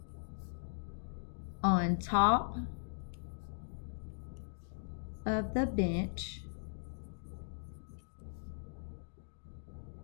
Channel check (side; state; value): right; silent; digital silence